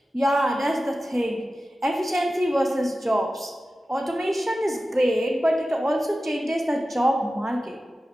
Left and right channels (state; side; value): normal; both; correlation 0.94